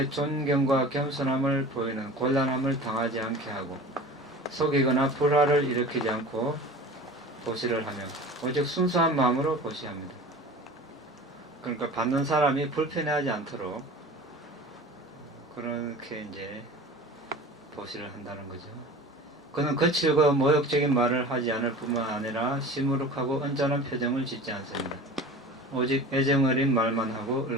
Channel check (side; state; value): both; normal; correlation 0.38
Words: 존경과 겸손함을 보이는 곤란함을 당하지 않게 하고 속이거나 불화를 일으키지 않고 보시를 하며 오직 순수한 마음으로 보시합니다. 그러니까 받는 사람이 불편해하지 않도록 그렇게 이제 보시를 한다는 거죠. 그는 거칠고 모욕적인 말을 하지 않을 뿐만 아니라 시무룩하고 언짢은 표정을 짓지 않습니다. 오직 애정어린 말만 하고